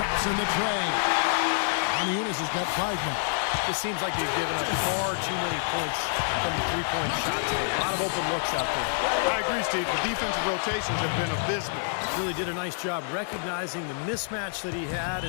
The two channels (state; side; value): silent; right; digital silence